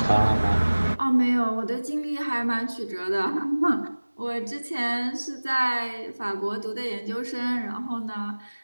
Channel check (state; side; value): inverted; both; correlation -1.00